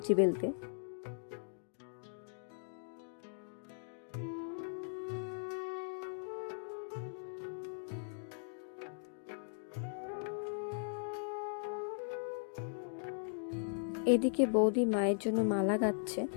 বেলতে। এদিকে বৌদি মায়ের জন্য মালা গাচ্ছে।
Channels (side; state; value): right; silent; digital silence